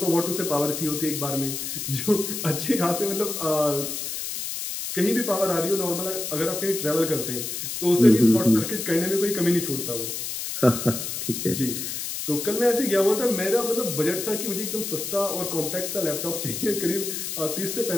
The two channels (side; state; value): left; noise; hiss, 5 dB below the sound